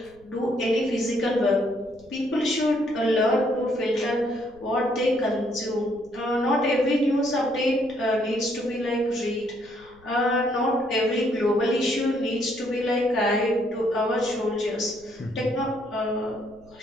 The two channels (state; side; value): noise; left; rumble, 28 dB below the sound